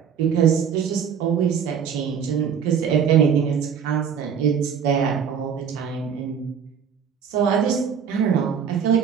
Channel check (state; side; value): quieter; left; 7.4 dB